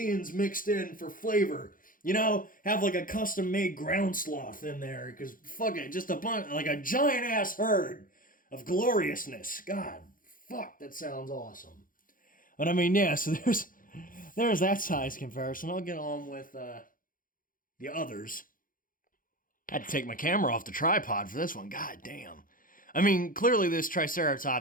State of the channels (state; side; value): late; right; 0.40 ms